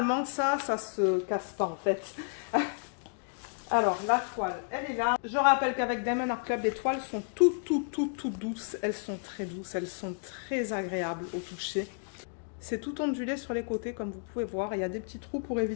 ça se casse pas en fait. Alors, la toile, elle est là. Je rappelle qu'avec Diamond Art Club, les toiles sont toutes douces. Elles sont très douces, elles sont très agréables au toucher. C'est tout ondulé sur les côtés, comme vous pouvez voir. Il y a des petits trous pour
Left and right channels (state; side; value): silent; right; 57 dB below the other